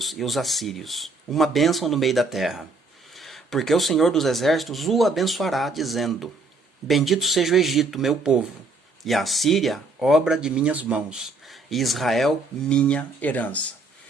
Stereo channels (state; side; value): quieter; left; 3.5 dB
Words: e os assírios, uma bênção no meio da terra. Porque o Senhor dos Exércitos o abençoará, dizendo: Bendito seja o Egito, meu povo, e a Assíria, obra de minhas mãos, e Israel, minha herança.